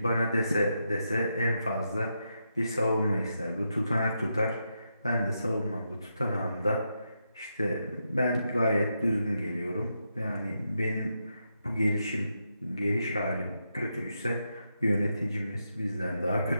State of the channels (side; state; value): both; inverted; correlation -0.84